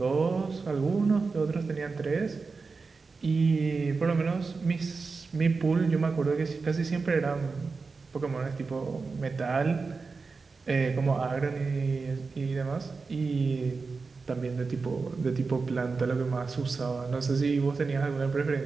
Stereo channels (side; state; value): left; quieter; 4.4 dB